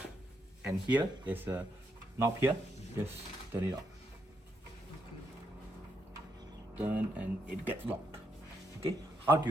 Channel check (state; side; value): normal; both; correlation 0.79